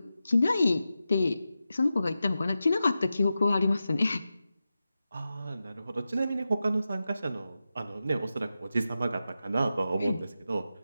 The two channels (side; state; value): both; inverted; correlation -0.91